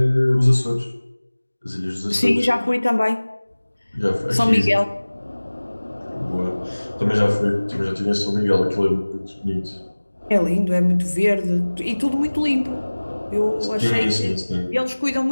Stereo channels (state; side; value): inverted; both; correlation -1.00